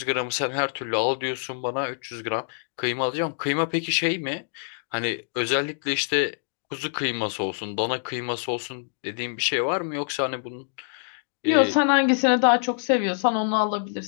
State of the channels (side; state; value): right; silent; digital silence